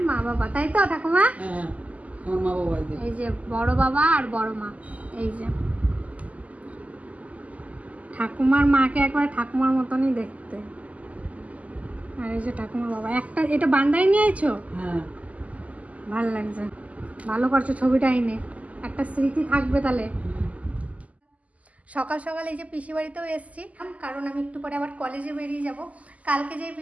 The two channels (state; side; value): late; left; 0.072 ms